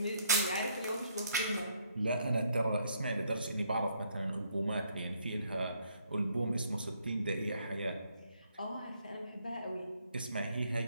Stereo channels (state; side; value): inverted; both; correlation -0.70